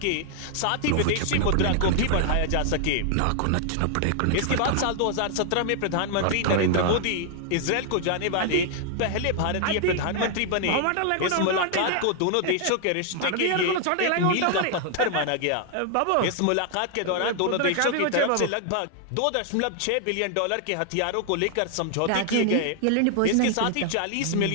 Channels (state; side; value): different; both; correlation 0.00